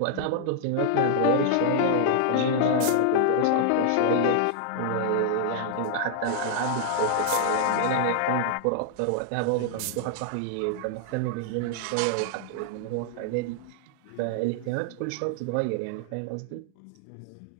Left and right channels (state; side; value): different; both; correlation -0.01